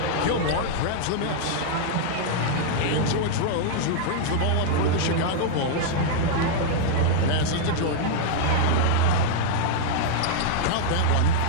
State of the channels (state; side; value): different; both; correlation -0.01